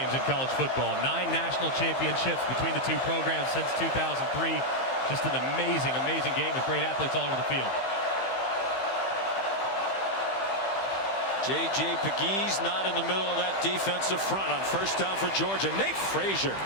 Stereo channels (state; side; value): late; right; 15 ms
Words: in college football. 9 national championships between the 2 programs since 2003. Just an amazing, amazing game with great athletes all over the field. J.J. Pegues not in the middle of that defensive front on first down for Georgia. Nate Frazier